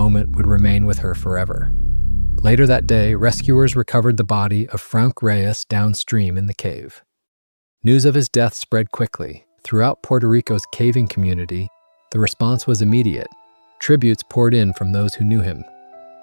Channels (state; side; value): inverted; both; correlation -1.00